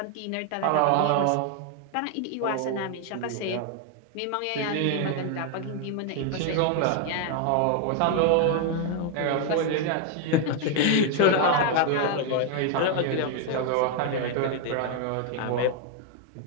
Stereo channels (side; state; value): both; different; correlation 0.01